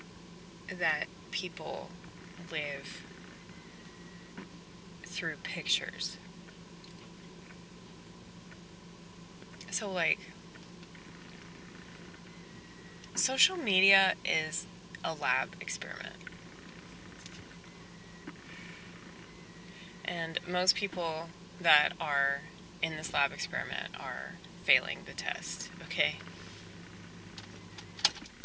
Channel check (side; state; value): both; identical; correlation 1.00